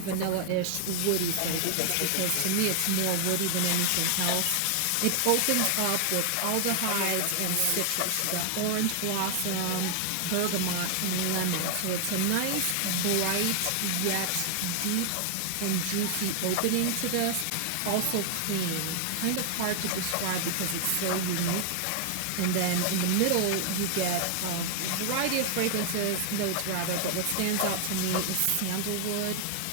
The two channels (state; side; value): different; both; correlation 0.00